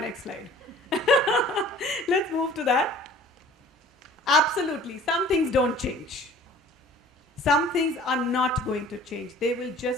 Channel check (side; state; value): both; normal; correlation 0.49